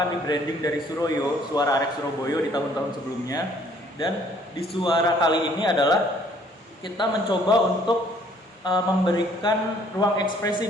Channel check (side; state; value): both; normal; correlation 0.60